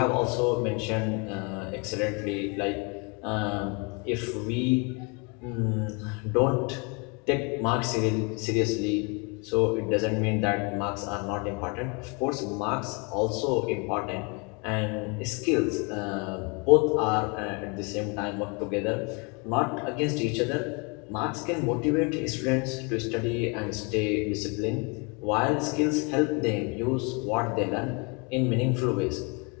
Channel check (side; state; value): right; quieter; 31.9 dB